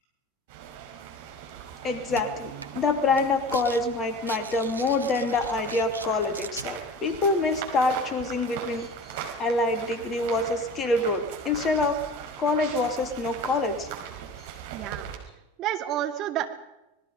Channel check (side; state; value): both; normal; correlation 0.37